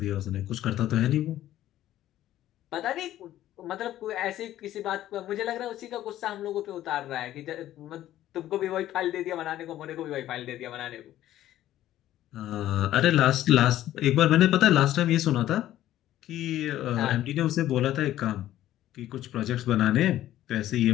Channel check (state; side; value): quieter; right; 13.3 dB